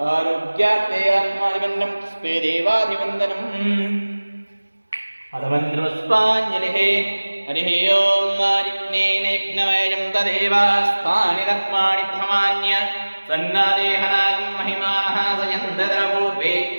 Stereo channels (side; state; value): both; inverted; correlation -1.00